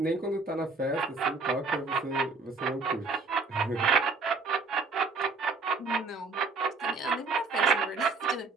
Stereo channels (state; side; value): quieter; left; 4.2 dB